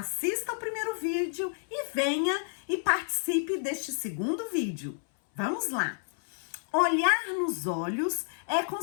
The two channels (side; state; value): right; silent; 58 dB below the other